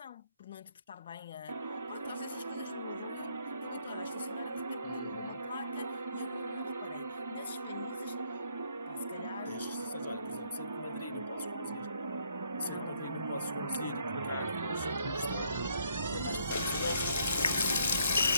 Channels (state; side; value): inverted; both; correlation -0.69